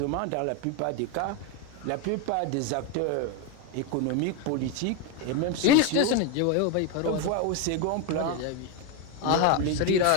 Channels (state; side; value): different; both; correlation 0.02